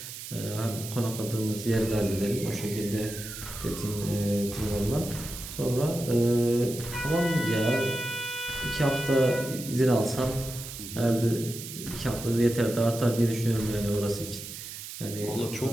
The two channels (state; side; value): noise; right; hiss, 10 dB below the sound